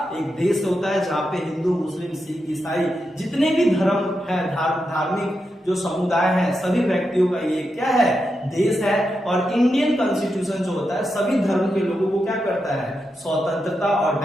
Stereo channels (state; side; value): normal; both; correlation 0.86